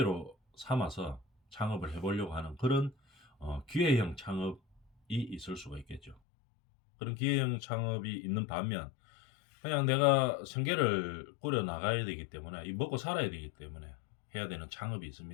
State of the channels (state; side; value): drops out; right; at 6.2 s